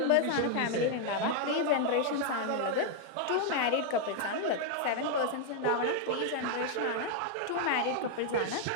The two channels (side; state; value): both; different; correlation 0.00